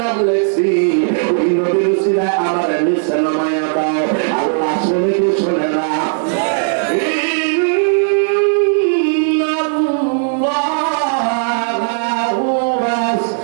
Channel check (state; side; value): silent; left; digital silence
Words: লেখছি ওই নবীর উসিলায় আমার নিচে নামায়া দাও আল্লাহ শুনে কি শুনে না